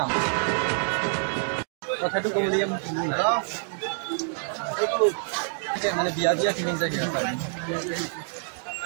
কথাটো ক'ব লাগে এইটো মানে বিয়া বিয়া ফিলিংছ আহি আছে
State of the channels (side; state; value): left; silent; digital silence